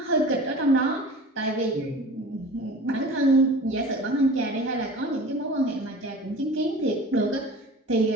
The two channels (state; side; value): normal; both; correlation 0.39